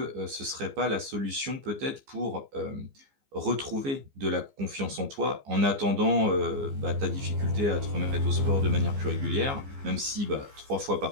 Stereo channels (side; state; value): left; late; 15 ms